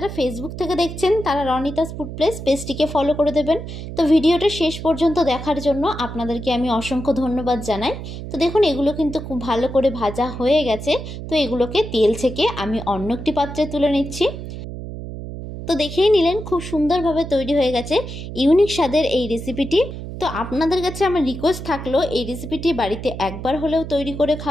ফেসবুক থেকে দেখছেন তারা রনিতাস ফুড প্লেস পেজটিকে ফলো করে দেবেন। তো ভিডিওটা শেষ পর্যন্ত দেখার জন্য আপনাদেরকে আমি অসংখ্য ধন্যবাদ জানাই। তো দেখুন এগুলো কিন্তু খুব ভালো করে ভাজা হয়ে গেছে। তো এগুলোকে তেল থেকে আমি অন্য একটি পাত্রে তুলে নিচ্ছি। তো দেখেই নিলেন খুব সুন্দরভাবে তৈরি হয়ে গেছে ইউনিক স্বাদের এই রেসিপিটি। তো আপনাদের কাছে আমার রিকোয়েস্ট থাকলো এই রেসিপিটি বাড়িতে একবার হলেও তৈরি করে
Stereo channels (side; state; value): right; noise; hum, 9 dB below the sound